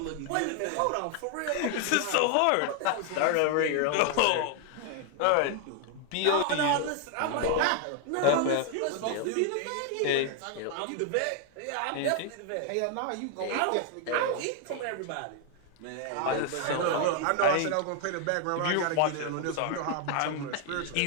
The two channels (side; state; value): both; different; correlation 0.00